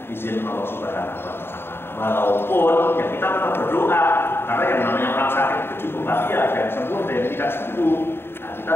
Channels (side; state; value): right; late; 0.11 ms